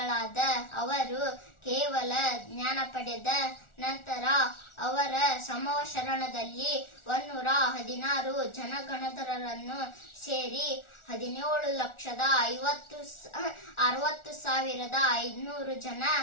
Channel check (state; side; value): late; right; 1.4 ms